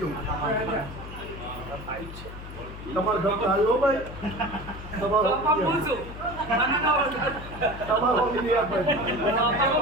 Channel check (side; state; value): left; noise; hum, 12 dB below the sound